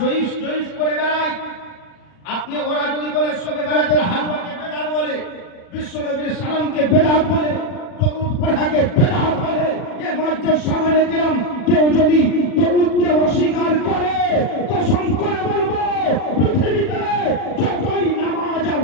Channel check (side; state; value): right; late; 40 ms